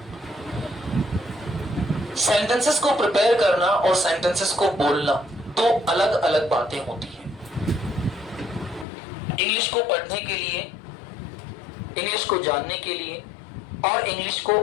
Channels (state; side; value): drops out; right; at 8.8 s